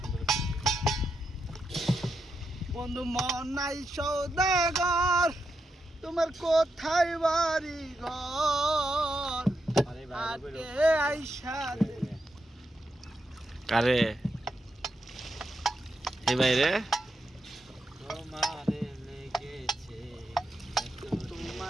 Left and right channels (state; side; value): normal; both; correlation 0.85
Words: সুন্দর বন্ধু মন নাই সৌদাগর, তোমার কোথায় বাড়ি ঘর? আরে আটে ভাই আইসা কারে এই বাইরে তোমারে লেগেছে